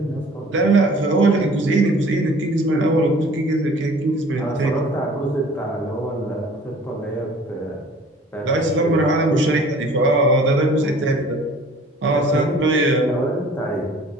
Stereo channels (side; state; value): both; normal; correlation 0.50